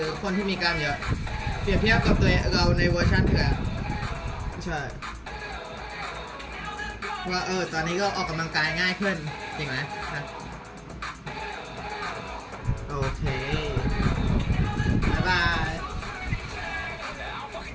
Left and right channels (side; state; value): both; identical; correlation 1.00